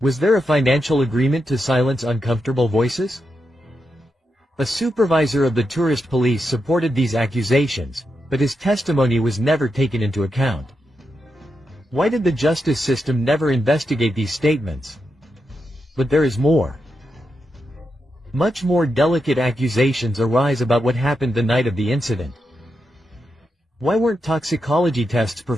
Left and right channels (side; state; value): both; normal; correlation 0.86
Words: Was there a financial agreement to silence uncomfortable voices? A supervisor of the tourist police supported these accusations, but his testimony was never taken into account. Why did the justice system never investigate these statements? But there is more. Much more delicate accusations arise about what happened the night of the incident. Why weren't toxicology tests